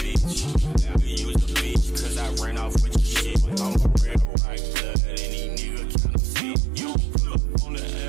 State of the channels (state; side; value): drops out; left; at 4.2 s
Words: I use the bitch cause I ran off with your shit. I'm a real right blood. Any nigga counterfeit. You pull up on the